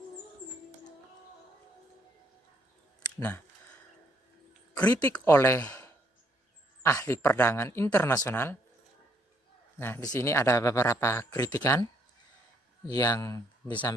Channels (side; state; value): both; normal; correlation 0.70